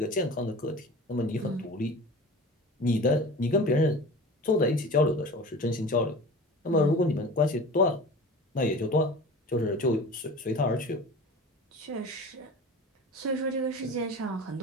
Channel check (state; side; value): normal; both; correlation 0.37